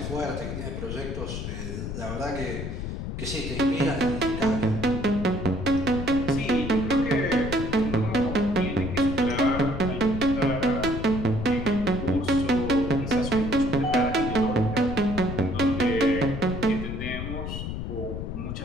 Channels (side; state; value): left; noise; rumble, 5 dB below the sound